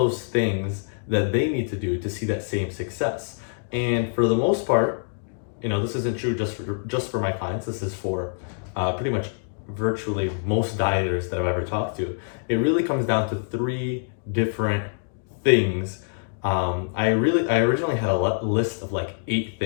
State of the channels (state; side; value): silent; right; digital silence